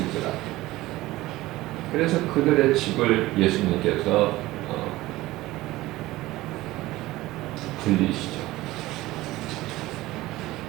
그래서 그들의 집을 예수님께서 불리시죠.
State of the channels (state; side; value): quieter; left; 17.9 dB